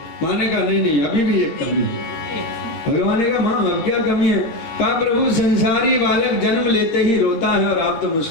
माँ ने कहा नहीं नहीं अभी भी एक कमी है। भगवान ने कहा माँ अब क्या कमी है। कहा प्रभु संसारी बालक जन्म लेते ही रोता है और आप तो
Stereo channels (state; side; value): late; right; 13 ms